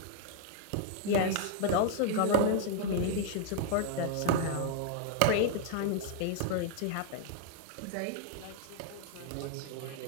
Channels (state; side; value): different; both; correlation 0.00